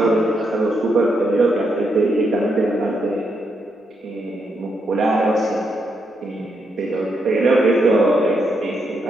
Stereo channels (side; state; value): both; normal; correlation 0.80